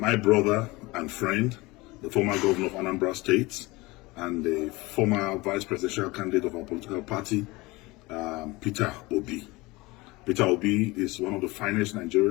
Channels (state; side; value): quieter; right; 22.4 dB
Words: brother and friend, the former governor of Anambra State and the former vice presidential candidate of our political party, Peter Obi. Peter Obi is one of the finest